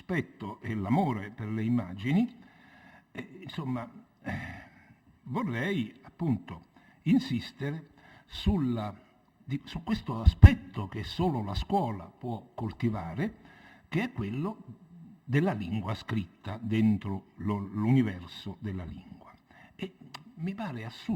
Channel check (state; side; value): identical; both; correlation 1.00